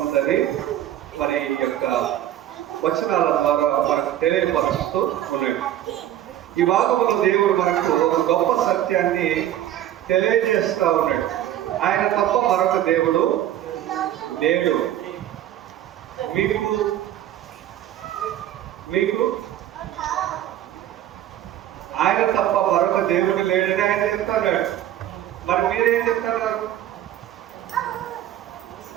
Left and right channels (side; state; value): left; quieter; 12.3 dB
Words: మరి యొక్క వచనాల ద్వారా మనకు తెలియపరుస్తూ ఉన్నాడు. ఈ భాగంలో దేవుడు మనకు ఒక గొప్ప సత్యాన్ని తెలియజేస్తా ఉన్నాడు. ఆయన తప్ప మరొక దేవుడు లేడు. మీకు ఆయన తప్ప మరొక దేవుడు లేడని ఆయన చెప్తున్నాడు. మరి మీరేం చెప్తున్నారు?